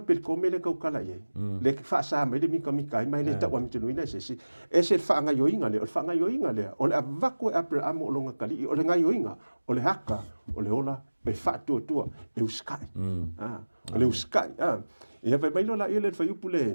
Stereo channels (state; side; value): inverted; both; correlation -1.00